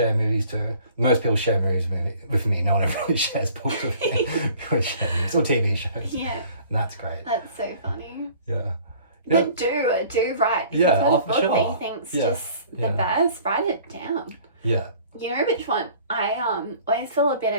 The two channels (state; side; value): inverted; both; correlation -0.51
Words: movies too. Most people share movies with me. No one ever really shares books with me. People share movies or TV shows. Yeah. And that's great. That's so funny. Yeah. But do write. If yeah, you've got a book sure. that you think's just the best, write it down. Yeah. You know which one? I always feel a bit